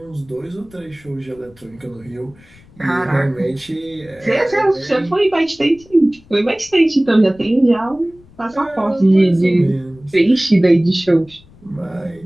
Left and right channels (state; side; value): noise; left; rumble, 26 dB below the sound